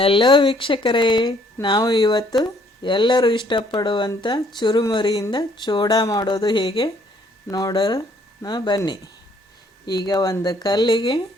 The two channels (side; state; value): both; normal; correlation 0.64